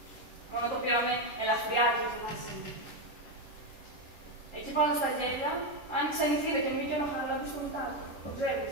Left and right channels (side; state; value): right; late; 10 ms